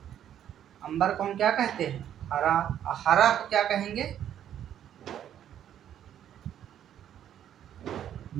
अंबर को हम क्या कहते हैं, हरा। हरा को क्या कहेंगे,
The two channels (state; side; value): quieter; left; 10.3 dB